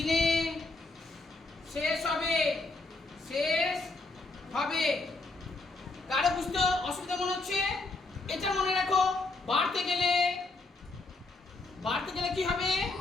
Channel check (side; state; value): right; quieter; 3.3 dB